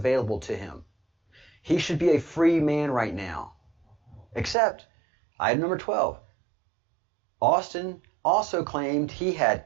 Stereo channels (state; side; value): drops out; left; at 4.5 s